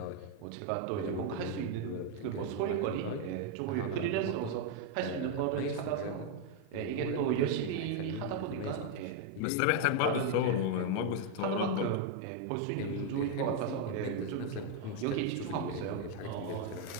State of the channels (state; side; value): different; both; correlation 0.01